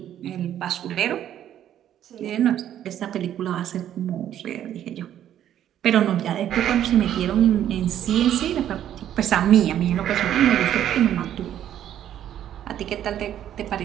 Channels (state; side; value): quieter; left; 10.9 dB